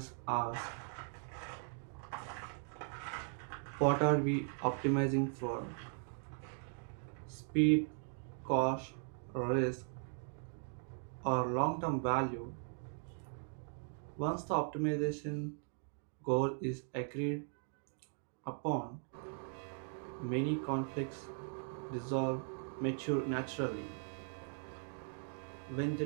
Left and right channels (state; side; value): silent; left; 52 dB below the other